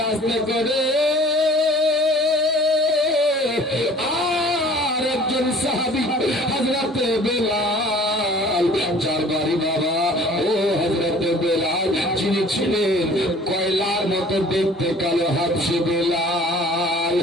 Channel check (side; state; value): both; normal; correlation 0.49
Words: আস্তে করে আর একজন সাহাবী হযরতে বেলাল, যার বাড়ি বাবা ও হযরতে বেলাল, যিনি ছিলেন কয়লার মতো দেখতে কালো হাবশী বেলাল।